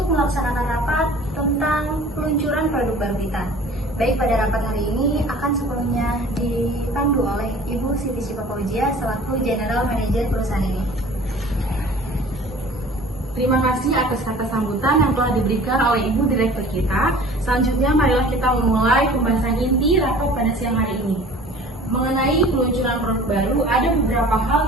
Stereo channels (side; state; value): both; normal; correlation 0.46